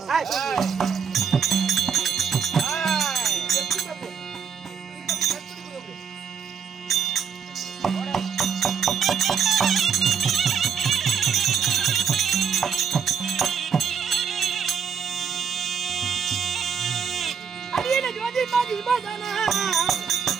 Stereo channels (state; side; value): quieter; left; 6.8 dB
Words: அடியேன ஜோதி மாதி பதனா